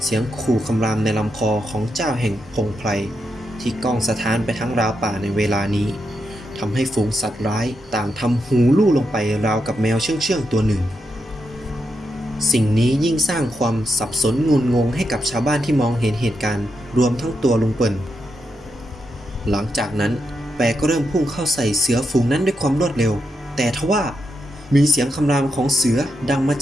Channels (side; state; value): both; normal; correlation 0.84